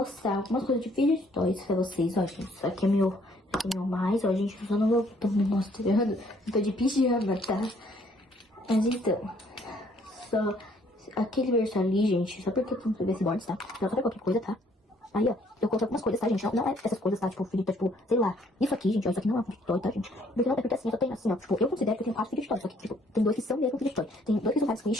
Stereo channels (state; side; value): normal; both; correlation 0.63